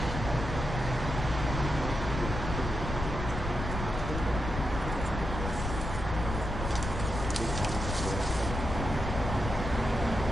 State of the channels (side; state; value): left; noise; rumble, 5 dB below the sound